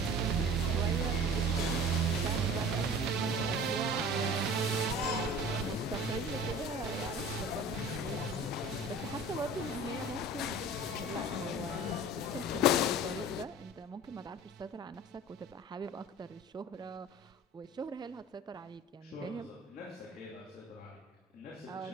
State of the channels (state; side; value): normal; both; correlation 0.42